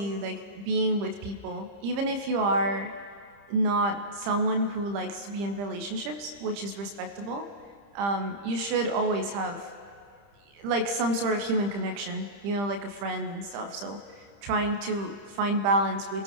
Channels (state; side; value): late; left; 30 ms